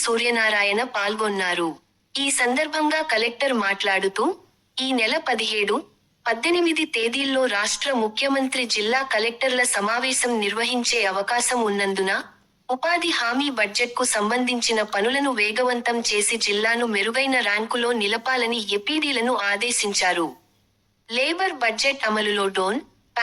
సూర్యనారాయణ పాల్గొన్నారు. ఈ సందర్భంగా కలెక్టర్ మాట్లాడుతూ, ఈ నెల 17, 18 తేదీల్లో రాష్ట్ర ముఖ్యమంత్రి జిల్లా కలెక్టర్ల సమావేశం నిర్వహించే అవకాశం ఉన్నందున, ఉపాధి హామీ బడ్జెట్కు సంబంధించిన పనులను వేగవంతం చేసి జిల్లాను మెరుగైన ర్యాంకులో నిలపాలని ఎపిడీలను ఆదేశించారు. లేబర్ బడ్జెట్ అమలులో డోన్,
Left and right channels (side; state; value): both; identical; correlation 1.00